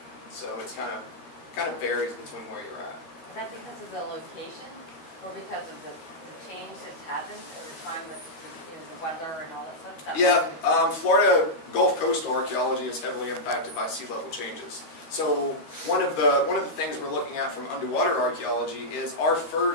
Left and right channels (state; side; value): late; right; 13 ms